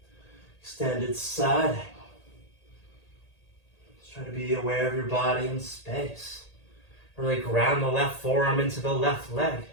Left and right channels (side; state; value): right; late; 1.8 ms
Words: Extended side angle. Just try to be aware of your body and space. Really ground the left forearm into the left leg.